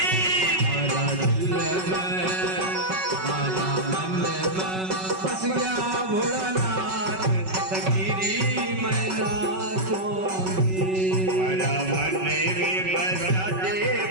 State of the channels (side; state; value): left; late; 5.3 ms